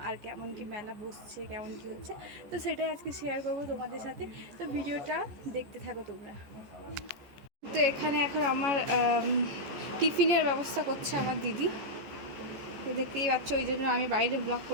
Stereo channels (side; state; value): left; late; 14 ms